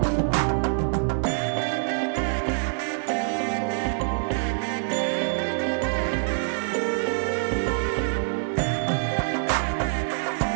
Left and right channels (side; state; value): left; silent; digital silence